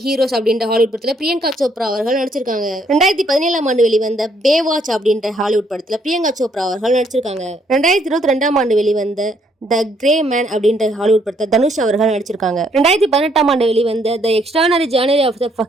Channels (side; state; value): both; normal; correlation 0.69